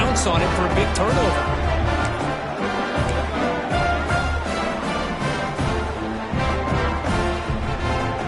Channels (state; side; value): identical; both; correlation 1.00